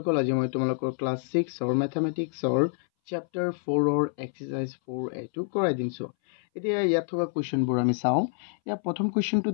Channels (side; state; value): right; silent; 60 dB below the other